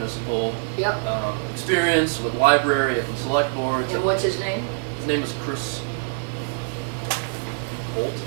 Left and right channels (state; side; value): silent; left; digital silence